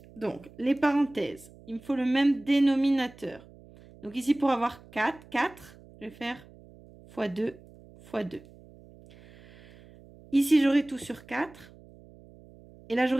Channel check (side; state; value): right; noise; hum, 23 dB below the sound